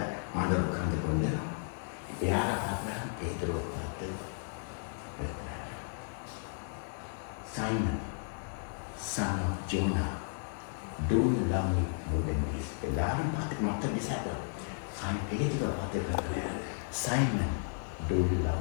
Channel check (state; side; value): silent; right; digital silence